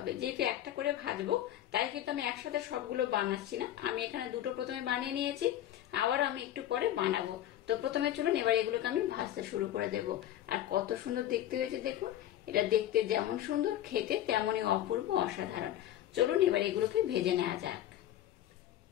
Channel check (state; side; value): quieter; right; 12.4 dB